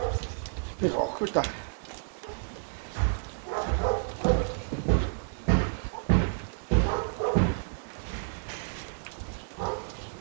Bit awkward that.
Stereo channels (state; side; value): silent; left; 57 dB below the other